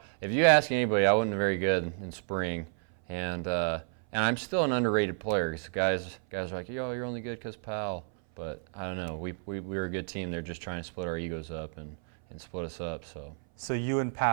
If you ask anybody, I wasn't very good in spring, and I'm still an underrated player. 'Cause guys are like, yo, you're only good because Powell. But I don't know. We were a good team. They're just trying to split our egos up and split us up. So So you and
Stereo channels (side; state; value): left; silent; 57 dB below the other